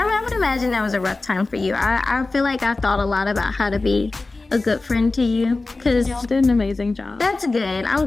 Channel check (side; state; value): right; quieter; 3.4 dB